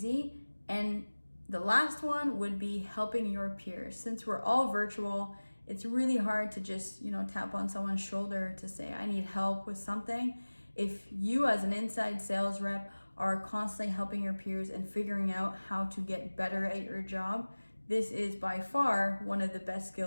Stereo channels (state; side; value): inverted; both; correlation -1.00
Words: And the last one would be helping your peers. Since we're all virtual, it's really hard to just, tap on someone's shoulder to say, I need help with something. If you as an inside sales rep are constantly helping your peers and figuring out how to get better at your job, this is by far one of the best